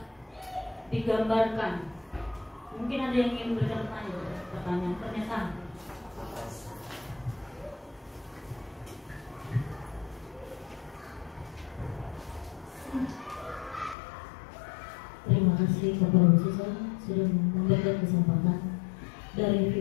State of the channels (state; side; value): drops out; right; at 14.0 s